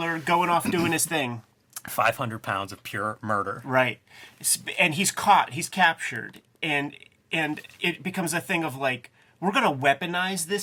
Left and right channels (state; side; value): identical; both; correlation 1.00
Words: going off doing his thing. 500 pounds of pure murder. Right. And he's caught. He's captured. And it becomes a thing of like, we're going to weaponize